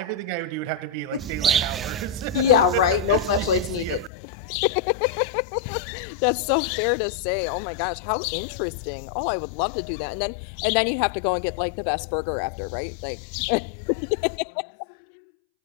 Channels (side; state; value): right; drops out; at 4.1 s